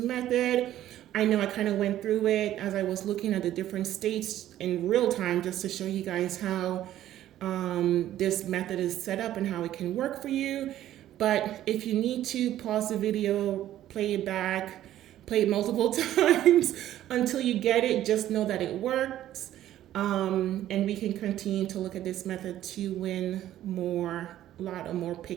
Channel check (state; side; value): quieter; left; 12.8 dB